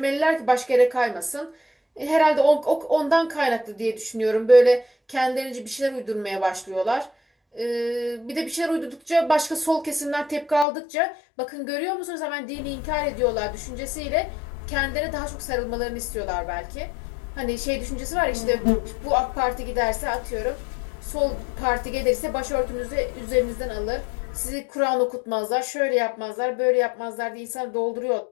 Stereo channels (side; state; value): right; drops out; at 10.7 s